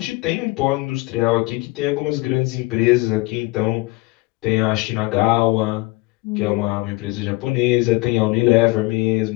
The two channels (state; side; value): quieter; right; 22.1 dB